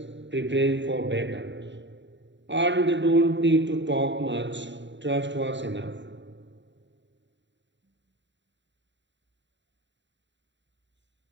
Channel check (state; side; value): late; left; 0.52 ms